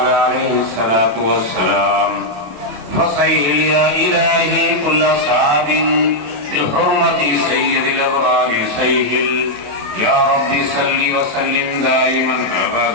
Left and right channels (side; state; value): left; late; 27 ms